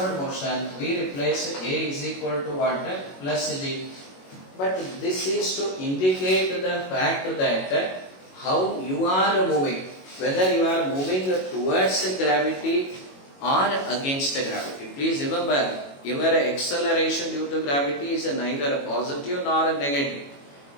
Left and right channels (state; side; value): late; right; 22 ms